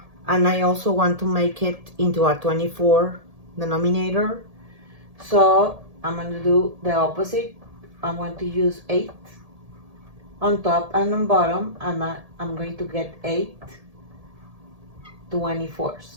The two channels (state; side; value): late; left; 1.7 ms